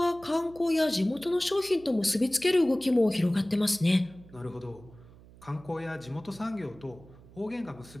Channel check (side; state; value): right; noise; hum, 22 dB below the sound